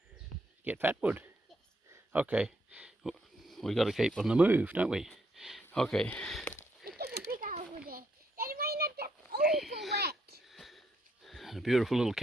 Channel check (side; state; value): both; normal; correlation 0.75